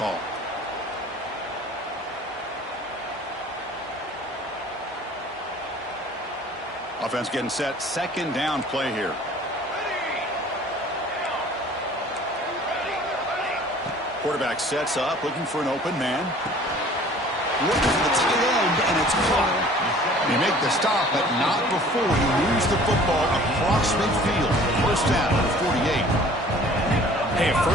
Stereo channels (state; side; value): normal; both; correlation 0.50